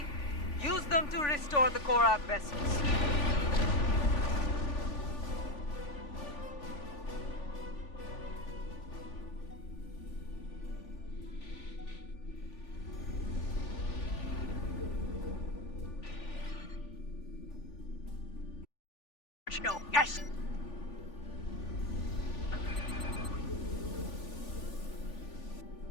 Use them to restore the Korath vessels. No, yes!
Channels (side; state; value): right; late; 3.4 ms